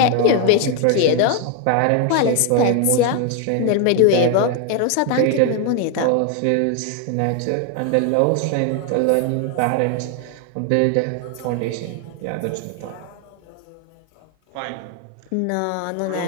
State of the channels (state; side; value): different; both; correlation 0.01